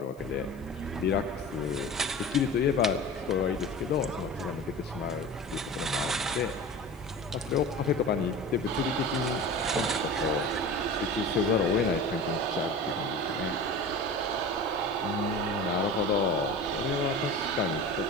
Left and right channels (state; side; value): noise; left; hiss, 29 dB below the sound